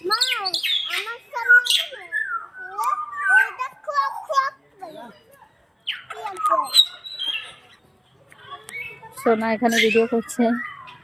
সোনা এখানে ভিডিও করছে।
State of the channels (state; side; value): identical; both; correlation 1.00